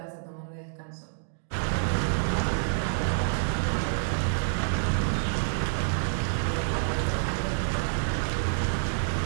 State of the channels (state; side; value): silent; left; digital silence